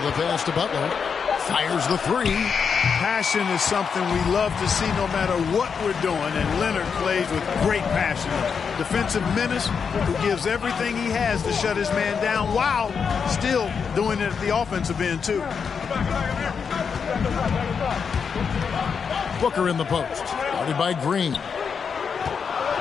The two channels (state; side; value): quieter; right; 6.2 dB